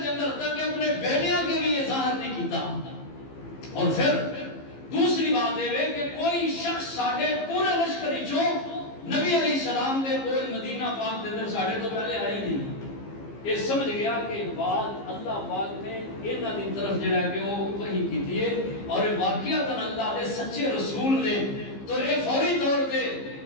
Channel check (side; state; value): right; late; 15 ms